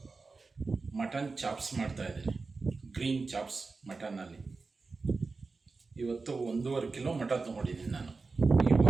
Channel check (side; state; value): left; quieter; 4.1 dB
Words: ಮಟನ್ ಚಾಪ್ಸ್ ಮಾಡ್ತಾಯಿದ್ದೀನಿ. ಗ್ರೀನ್ ಚಾಪ್ಸ್ ಮಟನ್ನಲ್ಲಿ. ಇವತ್ತು 1.5 ಕಿಲೋ ಮಟನ್ ತೊಗೊಂಡಿದ್ದೀನಿ ನಾನು. ಈ